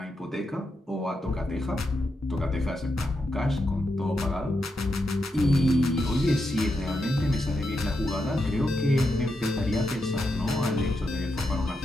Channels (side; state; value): both; normal; correlation 0.84